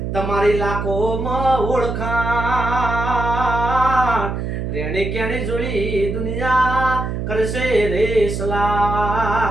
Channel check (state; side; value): noise; right; hum, 3 dB below the sound